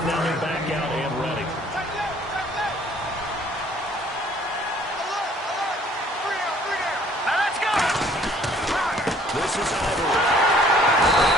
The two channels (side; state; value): both; normal; correlation 0.58